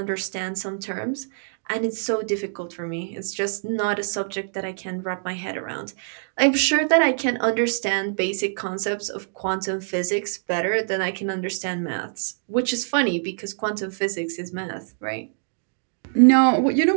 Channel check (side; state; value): left; silent; digital silence